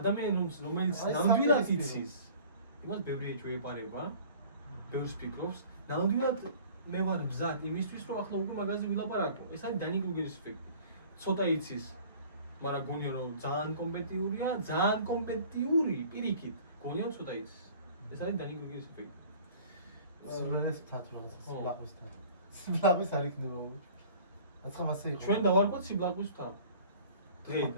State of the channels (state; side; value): inverted; both; correlation -0.48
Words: რომელიც ნამდვილად იცის, იმას ბევრი ეჭვი ეპარება, ბევრს ფიქრობს, ნამდვილად მე ვარ მზად იმისთვის, რომ ახლა უკვე მაგაზე ვილაპარაკო. ეს არის Dunning-Kruger-ის ეფექტი. ცოტა იცის, მაგრამ გონია რომ ძალიან კომპეტიურია, ძალიან კომპეტიური პირიქით, გონია რომ ცოტა იცის. ეს არის Dunning-Kruger-ის ეფექტი. სულელეს მთათ რაღაცა სიბლაყვის მთა. სიბლაყვის არ იქნება. აცხა მასე იყო. ჩვენ დავარქვათ სიბლაყვის მთა.